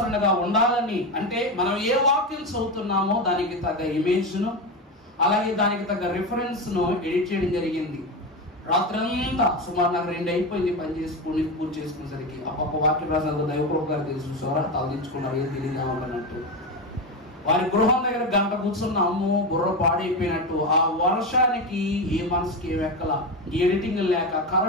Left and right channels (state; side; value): normal; both; correlation 0.17